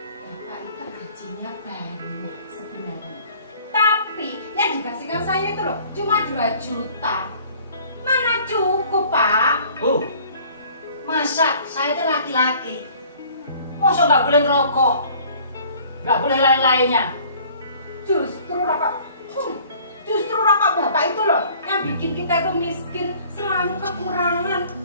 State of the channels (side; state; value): both; inverted; correlation -0.52